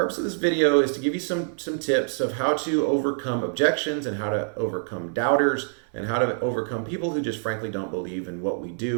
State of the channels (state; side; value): silent; left; 61 dB below the other